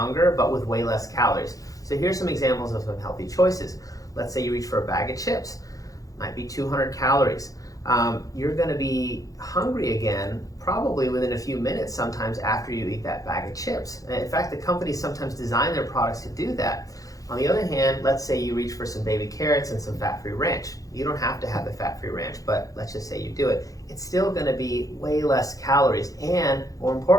but with way less calories. So here's some examples of some healthy choices. Let's say you reach for a bag of chips. Might be 200 calories. You're going to be hungry again probably within a few minutes sometimes after you eat that bag of chips. And in fact, the companies sometimes design their products to do that. On the other hand, let's say you reach for some baby carrots and some fat-free ranch. You don't have to have the fat-free ranch, but let's just say you do it. It's still going to be way less calories, and more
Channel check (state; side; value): late; right; 0.17 ms